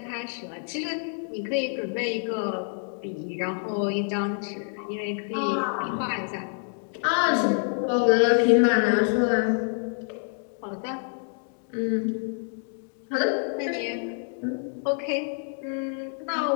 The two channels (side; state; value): right; silent; 55 dB below the other